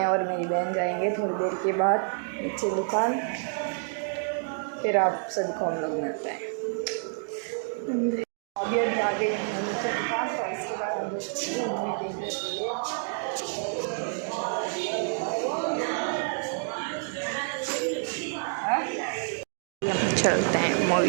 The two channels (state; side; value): silent; left; 59 dB below the other